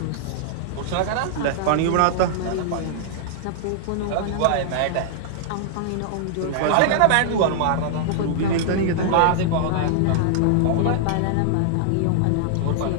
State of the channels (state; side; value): different; both; correlation -0.01